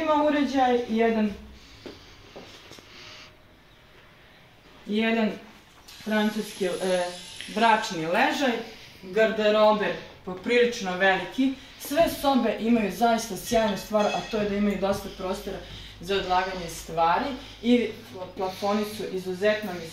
uređaj i jedan francuski bračni ležaj, garderober poprilično veliki. Sve sobe imaju zaista sjajnu stvar, a to je da imaju dosta prostora za odlaganje stvari i plafoni su izuzetno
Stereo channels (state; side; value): identical; both; correlation 1.00